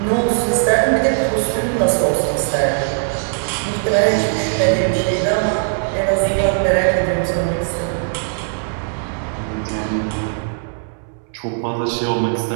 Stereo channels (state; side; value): silent; left; 67 dB below the other